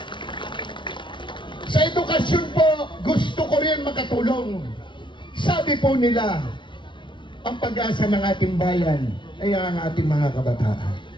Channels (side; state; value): right; late; 0.24 ms